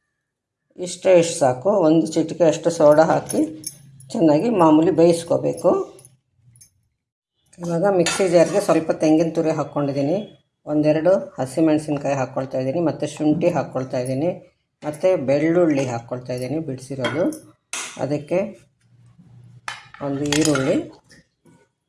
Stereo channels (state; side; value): identical; both; correlation 1.00